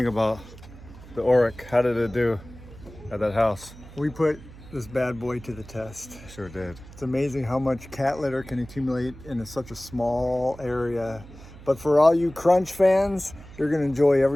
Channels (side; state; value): right; noise; hum, 18 dB below the sound